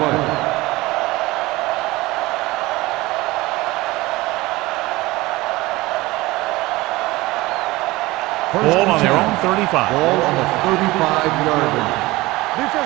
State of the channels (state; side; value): quieter; left; 20.1 dB